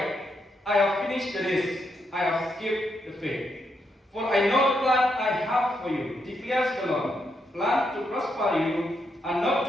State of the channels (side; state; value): both; normal; correlation 0.80